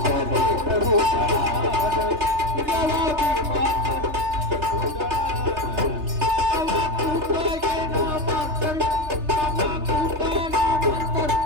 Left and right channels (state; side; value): late; left; 3.3 ms